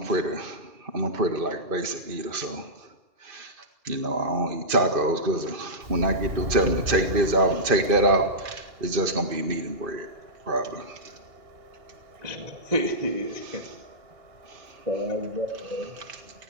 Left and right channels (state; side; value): late; left; 2.5 ms